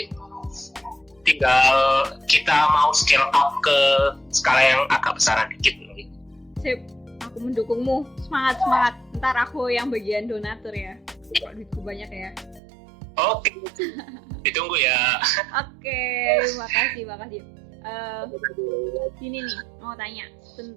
tinggal kita mau scale up ke skala yang agak besaran dikit. Sip, aku mendukungmu. Semangat. Ntar aku yang bagian donatur ya. Kok duitku banyak ya. Oke, ditunggu ya. Oke, makasih. Ini nih, mau tanya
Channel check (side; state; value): left; drops out; at 12.6 s